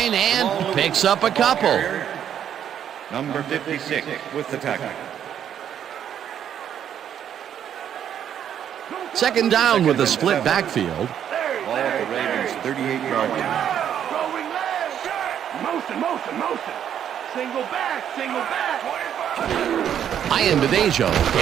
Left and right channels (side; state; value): left; quieter; 9.5 dB